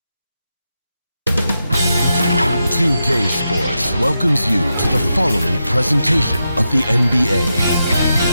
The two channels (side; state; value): both; inverted; correlation -0.87